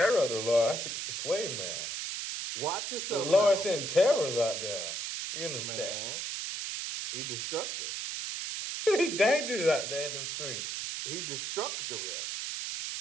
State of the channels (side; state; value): right; noise; hiss, 4 dB below the sound